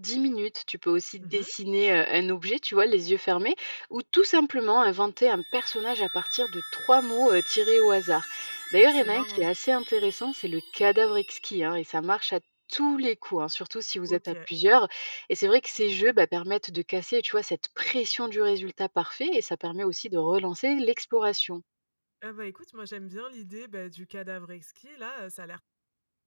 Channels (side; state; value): both; inverted; correlation -1.00